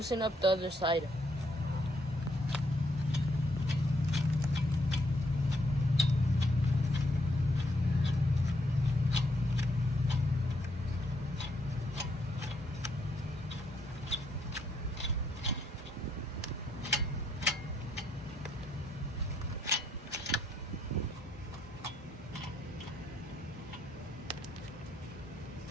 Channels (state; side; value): normal; both; correlation 0.74